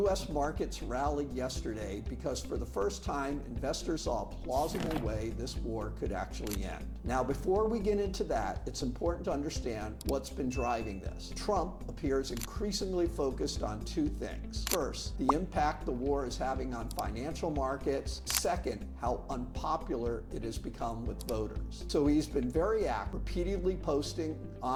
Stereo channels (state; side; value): identical; both; correlation 1.00